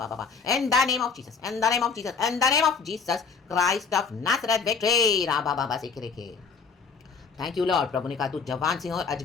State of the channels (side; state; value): right; quieter; 5.4 dB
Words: In the name of Jesus. In the name of Jesus. In the name of Jesus Christ of Nazareth. Victory. Rabba Baba Sikreke. Thank you lord. प्रभु ने कहा तू जवान सिंह और